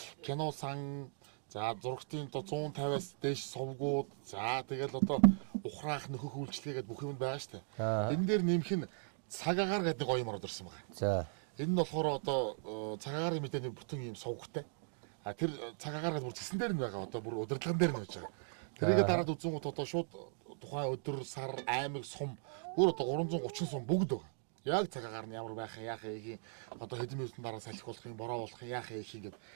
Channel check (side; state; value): left; silent; digital silence